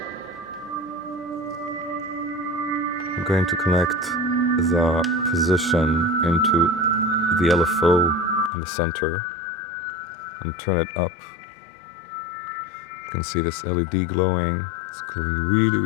I'm going to connect the position into the LFO in the center and turn it up. You can see this LED glowing. It's glowing really,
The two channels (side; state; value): right; drops out; at 8.5 s